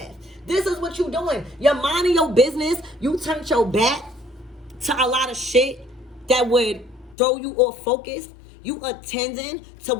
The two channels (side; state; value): right; drops out; at 7.2 s